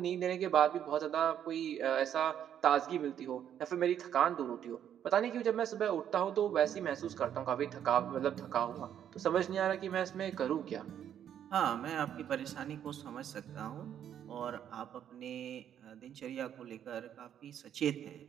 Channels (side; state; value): left; quieter; 9.7 dB